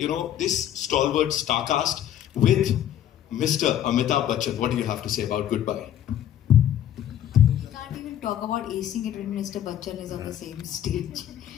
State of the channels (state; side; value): quieter; right; 11.0 dB